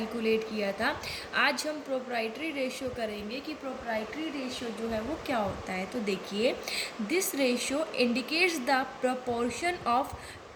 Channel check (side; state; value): both; identical; correlation 1.00